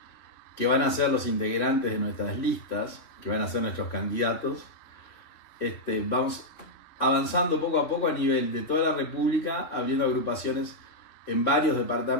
que van a ser los integrantes de nuestras listas, que van a ser nuestros candidatos, vamos avanzando poco a poco a nivel de toda la República, abriendo agrupaciones en varios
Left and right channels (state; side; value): late; right; 2.8 ms